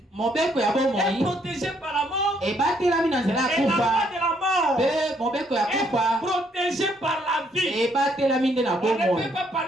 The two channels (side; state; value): both; normal; correlation 0.70